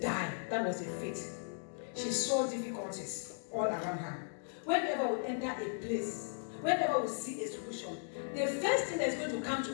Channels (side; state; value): right; silent; digital silence